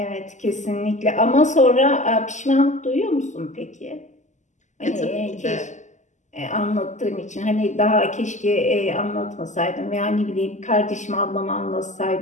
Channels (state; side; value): late; right; 0.34 ms